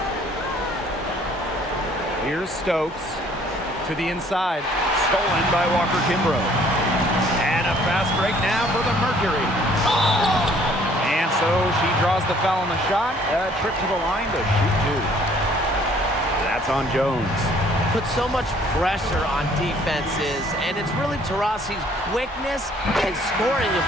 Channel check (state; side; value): normal; both; correlation 0.59